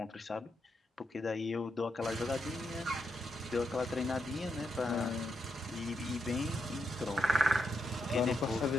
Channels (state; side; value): normal; both; correlation 0.81